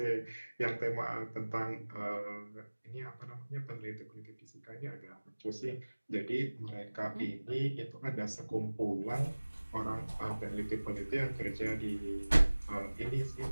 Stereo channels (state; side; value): inverted; both; correlation -1.00